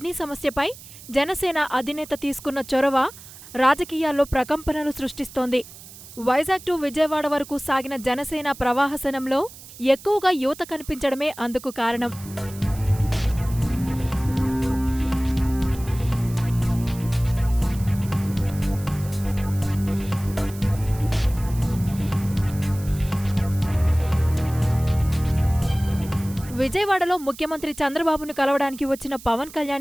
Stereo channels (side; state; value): right; noise; hiss, 17 dB below the sound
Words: సమస్యపై జనసేన అధినేత తీసుకున్న చొరవ రాజకీయాల్లో ప్రకంపనలు సృష్టిస్తోంది. వైజాగ్ టు విజయవాడ వరకు సాగిన జనసేన ప్రవాహసనంలో ఎక్కువగా యువత కనిపించడమే అందుకు కారణం. విజయవాడలో ముఖ్యమంత్రి చంద్రబాబును కలవడానికి వచ్చిన పవన్